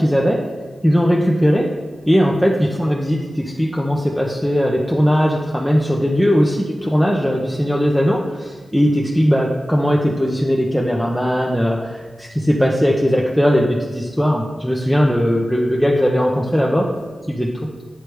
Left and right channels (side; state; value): both; normal; correlation 0.96